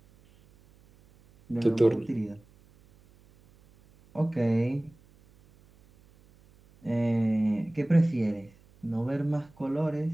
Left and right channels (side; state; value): right; noise; hum, 29 dB below the sound